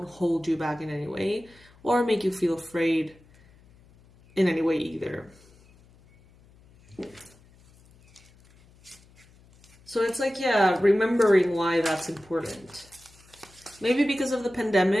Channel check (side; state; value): left; noise; hum, 28 dB below the sound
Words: hold you back in any way or make you feel afraid in any way either. So it's like, yeah, remembering why that's important. Maybe because of the